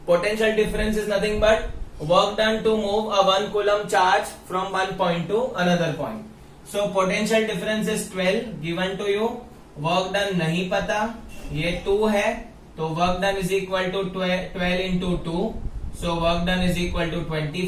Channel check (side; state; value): both; identical; correlation 1.00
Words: Potential difference is nothing but work done to move a 1 coulomb charge from 1 point to another point. So potential difference is 12 given to you. Work done नहीं पता, ये 2 है, तो work done is equal to 12 into 2. So work done is equal to